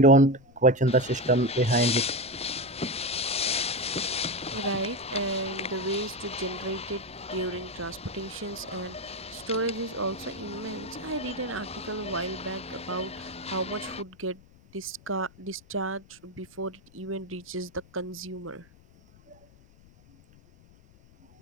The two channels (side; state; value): left; noise; rumble, 26 dB below the sound